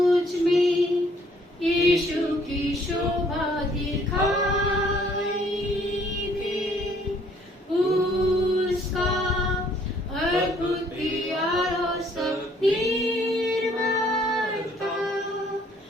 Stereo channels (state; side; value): normal; both; correlation 0.62